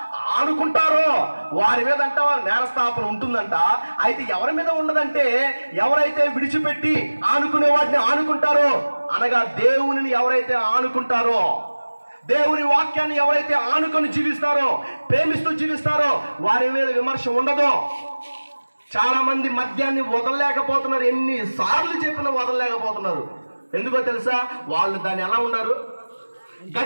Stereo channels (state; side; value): inverted; both; correlation -1.00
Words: ఆనుకుంటారో వారి మీద అంట నేరస్థాపన ఉంటుందంట. అయితే ఎవరి మీద ఉండదంటే, ఎవరైతే విడిచిపెట్టి ఆనుకునే వాటిని ఆనుకుంటారో, అనగా దేవునిని ఎవరైతే ఆనుకుంటారో, దేవుని వాక్యాన్ని ఎవరైతే ఆనుకొని జీవిస్తారో, ప్రేమిస్తూ జీవిస్తారో వారి మీద విమర్శ ఉండదు. చాలా మంది మద్యాన్ని వదలలేకపోతున్నారు, ఎన్నిసార్లు చెప్పినా వదలలేకపోతున్నారు. ఎందుకో తెలుసా, వాళ్ళు దాన్ని ఎలా ఉన్నారు,